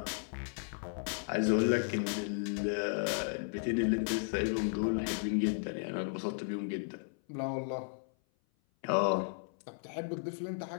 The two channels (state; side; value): silent; right; 55 dB below the other